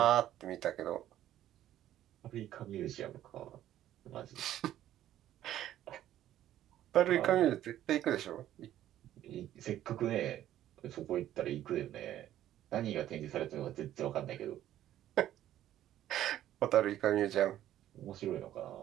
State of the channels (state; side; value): quieter; left; 12.4 dB